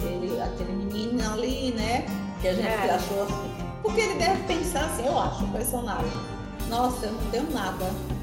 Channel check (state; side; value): identical; both; correlation 1.00